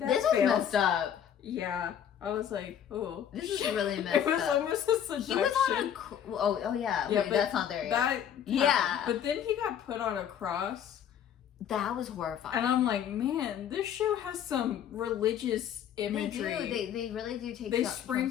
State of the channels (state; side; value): quieter; right; 9.3 dB